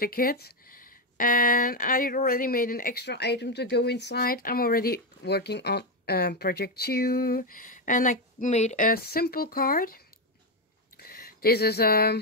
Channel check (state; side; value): normal; both; correlation 0.07